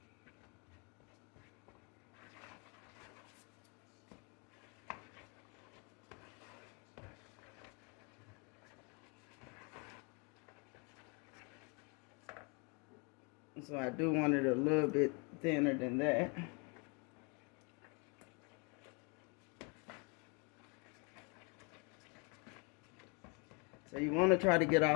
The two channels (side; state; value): right; quieter; 33.7 dB